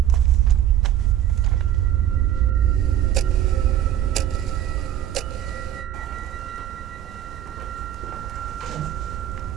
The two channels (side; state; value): left; quieter; 11.3 dB